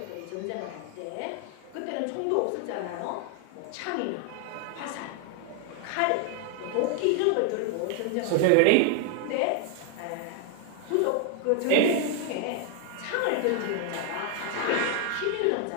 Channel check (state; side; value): different; both; correlation 0.00